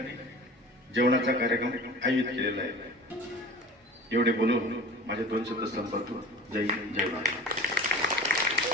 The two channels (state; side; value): normal; both; correlation 0.38